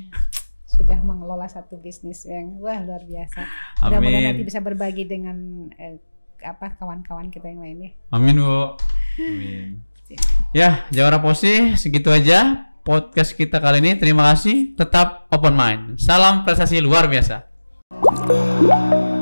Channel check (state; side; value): inverted; both; correlation -1.00